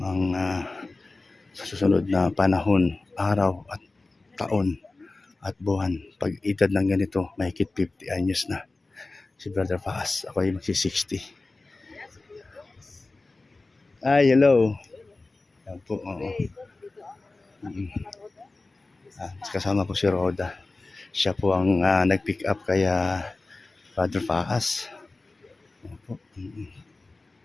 ang sa susunod na panahon, araw at taon at buwan. Pag edad ng ganito, mahigit 50 anyos na. Si Brother Faas, ako ay magsi-60. Ay, hello. Yan po, oo. Kasama po si Roda. Siya po ang nag-pick up kaya Brother Faas. Yan po.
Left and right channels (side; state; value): right; quieter; 3.3 dB